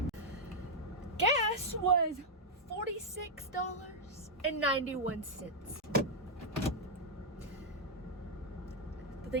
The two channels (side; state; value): both; normal; correlation -0.03